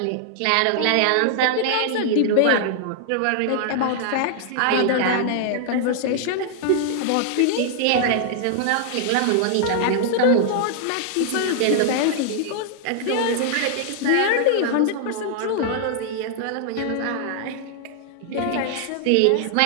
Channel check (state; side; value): different; both; correlation -0.01